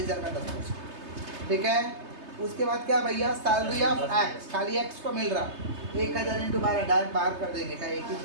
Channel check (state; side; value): late; left; 3.3 ms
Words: का 10%, ठीक है। उसके बाद क्या भैया, सैलरी ऑफ एक्स, खाली एक्स को मिल रहा 1,000 × 12, डायरेक्ट बाहर कर देंगे, क्या एक ही